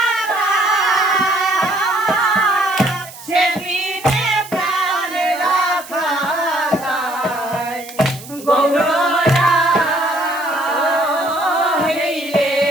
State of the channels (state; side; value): noise; right; hiss, 17 dB below the sound